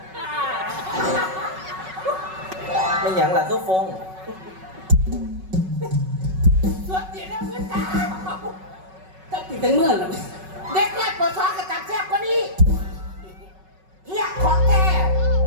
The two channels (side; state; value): left; late; 5.3 ms